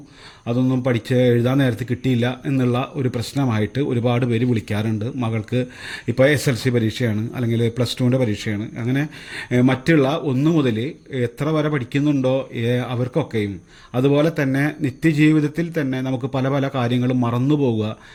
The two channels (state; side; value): identical; both; correlation 1.00